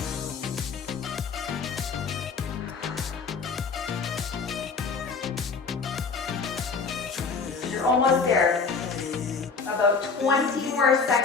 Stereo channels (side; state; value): right; quieter; 5.0 dB